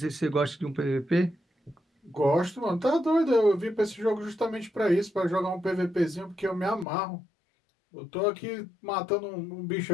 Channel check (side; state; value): right; drops out; at 6.9 s